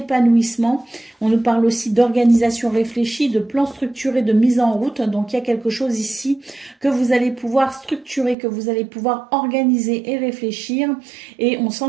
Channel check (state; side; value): drops out; left; at 8.3 s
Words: On nous parle aussi d'organisation réfléchie, de plan structuré, de mise en route. Donc il y a quelque chose ici que vous allez pouvoir structurer, que vous allez pouvoir organiser et réfléchir. Et on